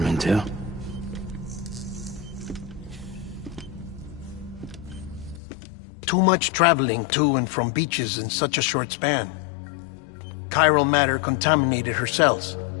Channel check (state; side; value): drops out; right; at 5.4 s